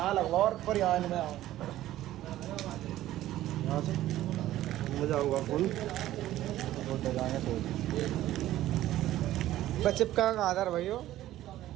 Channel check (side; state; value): left; quieter; 14.2 dB